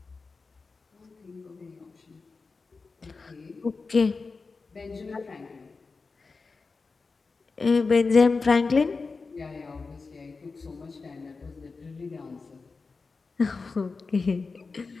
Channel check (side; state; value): right; quieter; 4.3 dB